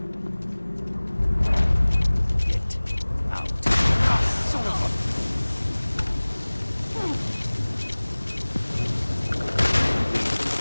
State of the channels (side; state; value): both; inverted; correlation -1.00